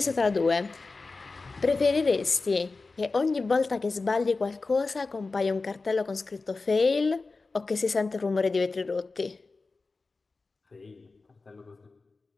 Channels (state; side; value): quieter; right; 3.8 dB